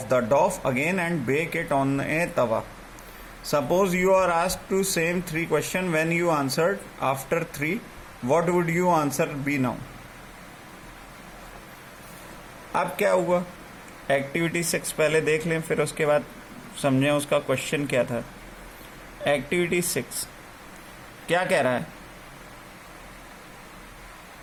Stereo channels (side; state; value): both; identical; correlation 1.00